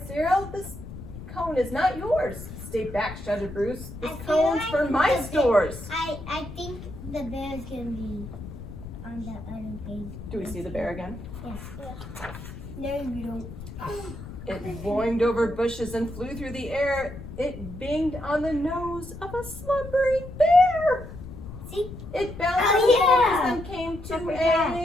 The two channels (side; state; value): left; noise; rumble, 12 dB below the sound